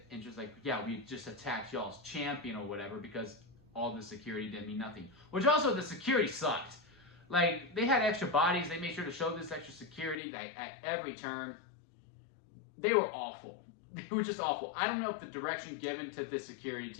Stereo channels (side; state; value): right; drops out; at 10.2 s